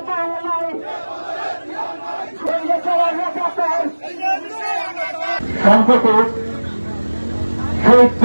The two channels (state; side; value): inverted; both; correlation -1.00